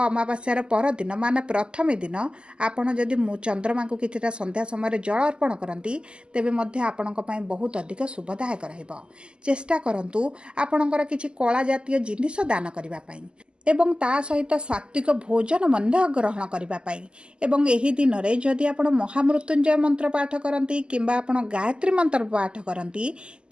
ଅମାବାସ୍ୟାର ପରଦିନ ମାନେ ପ୍ରଥମେ ଦିନ ଆପଣ ଯଦି ଚନ୍ଦ୍ରମାଙ୍କୁ କିଛିଟା ସନ୍ଧ୍ୟା ସମୟରେ ଜଳ ଅର୍ପଣ କରନ୍ତି, ତେବେ ମଧ୍ୟ ଆପଣଙ୍କ ପାଇଁ ବହୁତ ଅଧିକ ଶୁଭଦାୟକ ରହିବ। ଚେଷ୍ଟା କରନ୍ତୁ ଆପଣଙ୍କର କିଛି କଳା ଜାତୀୟ ଜିନିଷ ଦାନ କରିବା ପାଇଁ ଏବଂ ତା ସହିତ ସାତ୍ତ୍ୱିକ ଭୋଜନ ମଧ୍ୟ ଗ୍ରହଣ କରିବା ପାଇଁ। ଏବଂ ଏହି ଦିନରେ ଯଦି ଆପଣ ମହାମୃତ୍ୟୁଞ୍ଜୟ ମନ୍ତ୍ର ପାଠ କରନ୍ତି କିମ୍ବା ଆପଣ ଗାୟତ୍ରୀ ମନ୍ତ୍ର ପାଠ କରନ୍ତି,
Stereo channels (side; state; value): left; late; 0.050 ms